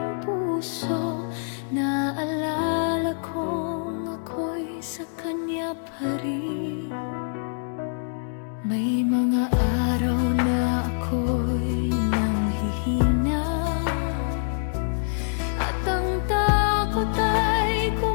puso, naalala kong ako'y sa kanya pa rin. May mga araw na ako'y nanghihina, at ang takot ay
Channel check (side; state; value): right; silent; digital silence